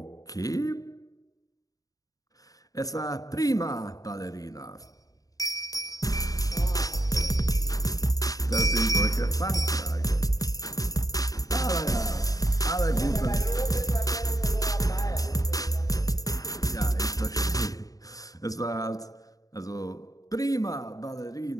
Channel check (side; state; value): right; late; 0.17 ms